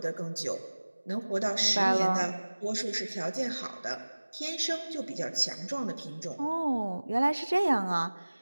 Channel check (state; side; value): inverted; both; correlation -1.00